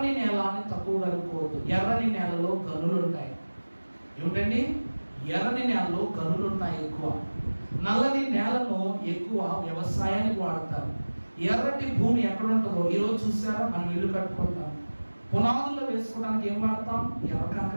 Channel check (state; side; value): inverted; both; correlation -1.00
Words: నేల అని తక్కువగా అనుకోవద్దు. ఎర్రని నేలలో గనులు ఉంటాయి. ఏమిటండి? ఎర్రని నేలలో గనులు ఉంటాయి ఎక్కువ. నల్లని నేలను ఎక్కువ వ్యవసాయానికి వాడతారు. ఎర్రటి భూమి ఎక్కడ ఉంటుందో ఈరోజు చూసారా, మనం ఇల్లు కట్టుకుంటాం, పునాదుల్లో వేసుకోవడానికి ఏం వాడతాం? ఎర్ర